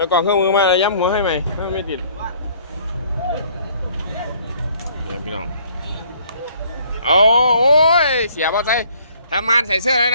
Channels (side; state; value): both; inverted; correlation -0.60